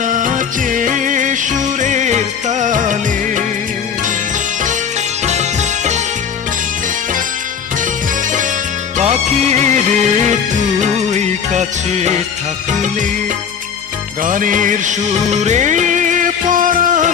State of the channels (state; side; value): quieter; right; 7.2 dB